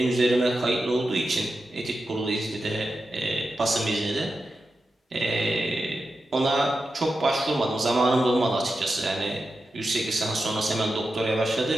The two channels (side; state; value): both; normal; correlation 0.90